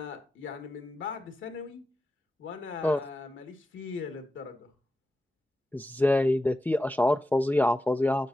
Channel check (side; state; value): both; normal; correlation 0.91